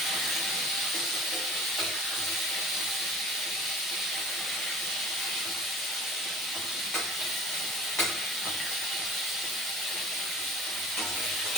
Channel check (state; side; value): normal; both; correlation 0.46